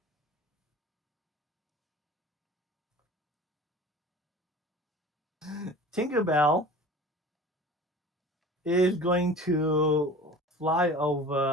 Tinkerbell is going to fly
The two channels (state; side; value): normal; both; correlation 0.40